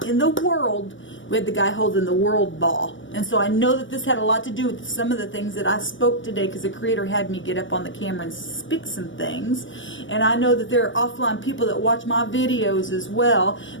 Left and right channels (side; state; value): right; late; 0.56 ms